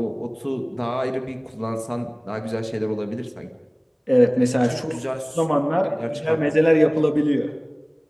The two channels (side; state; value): both; identical; correlation 1.00